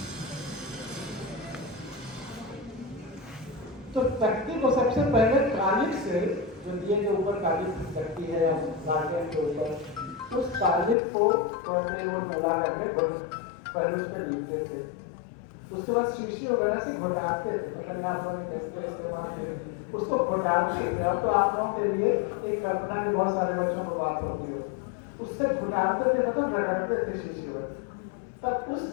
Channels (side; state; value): right; drops out; at 11.0 s